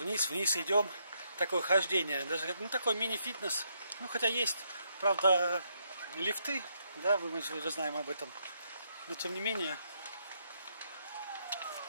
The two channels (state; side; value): inverted; both; correlation -0.76